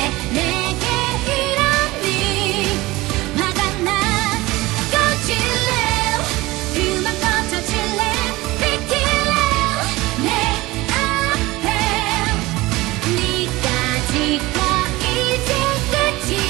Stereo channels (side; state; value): left; quieter; 20.2 dB